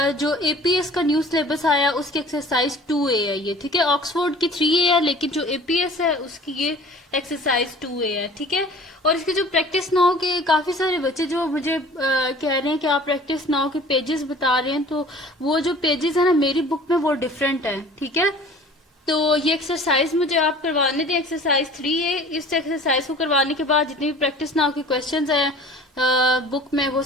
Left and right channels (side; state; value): both; normal; correlation 0.46